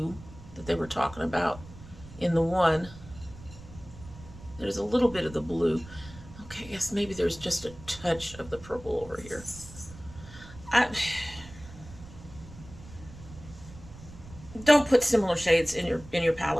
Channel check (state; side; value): noise; right; rumble, 17 dB below the sound